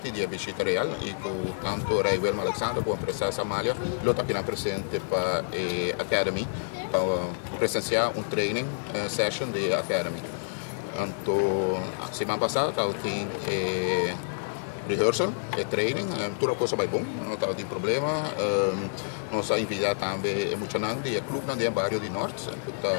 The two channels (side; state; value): right; silent; 59 dB below the other